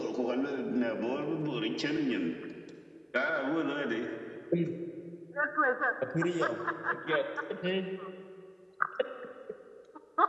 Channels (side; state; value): both; identical; correlation 1.00